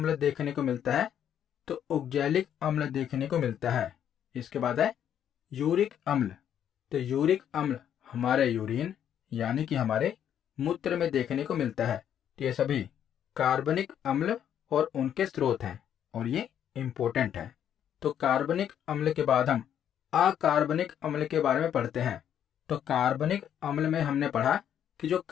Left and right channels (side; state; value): right; quieter; 9.6 dB